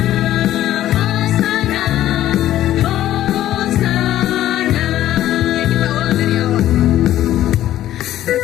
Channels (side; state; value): right; quieter; 13.1 dB